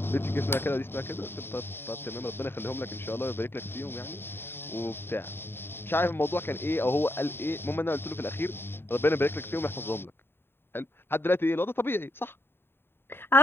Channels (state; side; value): late; right; 0.11 ms